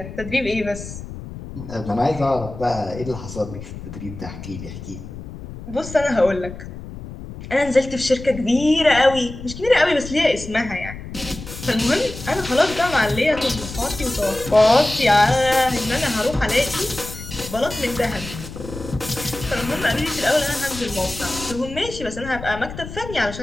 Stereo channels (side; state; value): left; noise; rumble, 12 dB below the sound